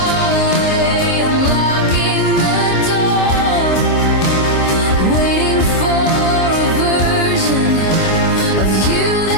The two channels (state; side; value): late; right; 26 ms